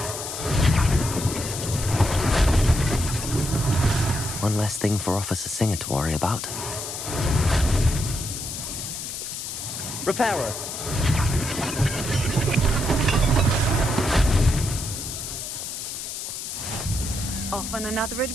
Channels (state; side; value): noise; left; hiss, 6 dB below the sound